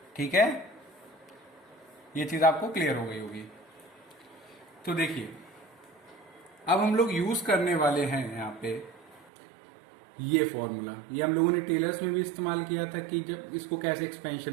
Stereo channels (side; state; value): left; drops out; at 9.3 s